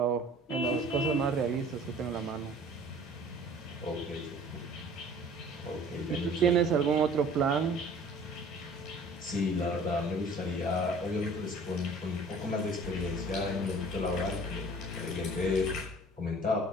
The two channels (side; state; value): both; normal; correlation 0.49